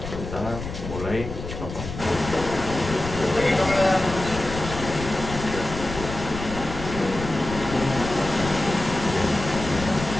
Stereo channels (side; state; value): left; noise; rumble, 8 dB below the sound